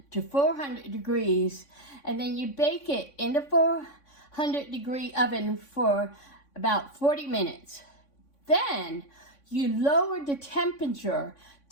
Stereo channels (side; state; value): right; late; 3.6 ms